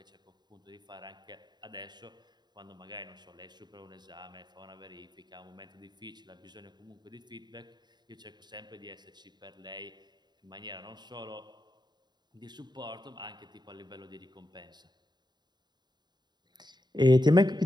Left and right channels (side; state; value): left; late; 0.21 ms